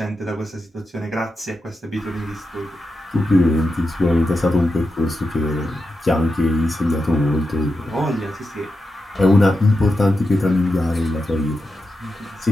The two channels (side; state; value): both; normal; correlation 0.89